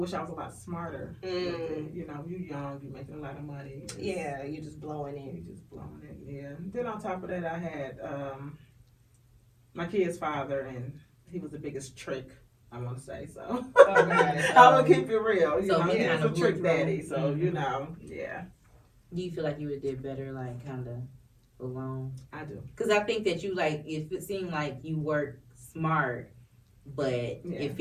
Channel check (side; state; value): both; identical; correlation 1.00